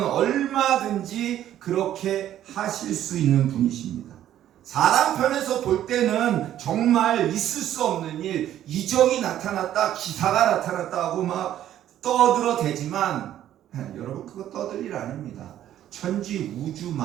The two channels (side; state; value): left; quieter; 11.8 dB